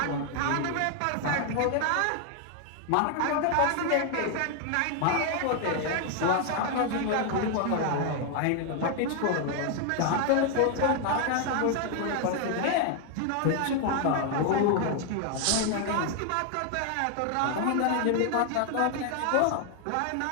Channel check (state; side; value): different; both; correlation 0.00